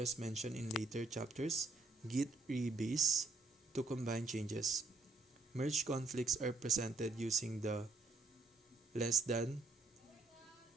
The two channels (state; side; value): quieter; left; 3.4 dB